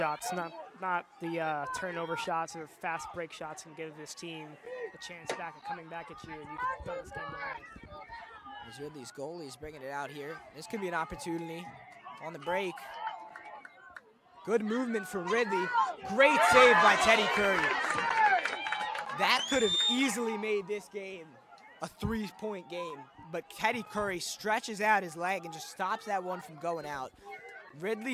not the turnover shots or fast break shots can give this team a chance back at coming back at you, and you can throw this game away. As Ridley's goalie's bringing it out here. This could be an opportunity on the break. Good movement from Ridley. Great save by Teddy Curry. That could have easily made this game a 3-point game, but Teddy Curry stretches out his leg and just stops that one from going out.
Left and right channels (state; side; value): identical; both; correlation 1.00